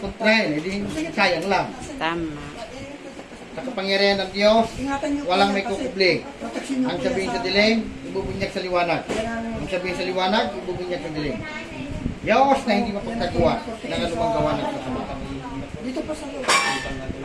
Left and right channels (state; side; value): identical; both; correlation 1.00